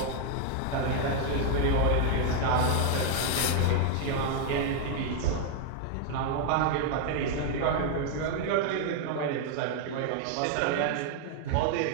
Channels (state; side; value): different; both; correlation 0.00